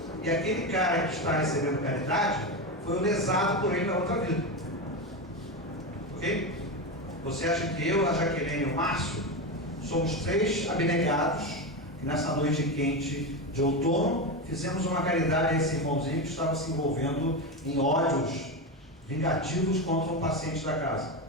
E aquele cara que está recebendo caridade foi o lesado por ele na outra vida. Ok? Você acha que eu, a Jaqueline e o Márcio somos 3 abnegados que nessa noite quente de outono fizemos uma caridade a esse irmãozinho que estava se envolvendo em ódios vingativos contra um paciente da casa?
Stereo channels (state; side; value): normal; both; correlation 0.16